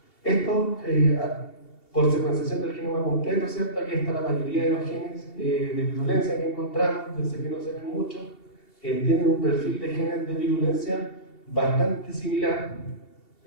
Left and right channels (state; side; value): late; right; 2.7 ms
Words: Esto, por secuenciación del genoma completo, ¿cierto? Aquí está la mayoría de los genes de virulencia que encontramos, yo sé que no se ven mucho, tienen un perfil de genes de virulencia bastante similar.